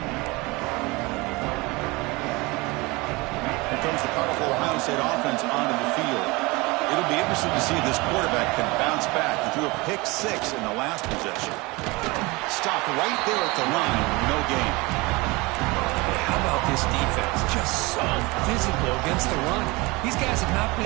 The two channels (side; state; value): left; quieter; 24.2 dB